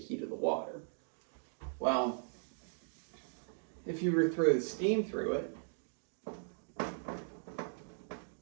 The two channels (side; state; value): left; silent; digital silence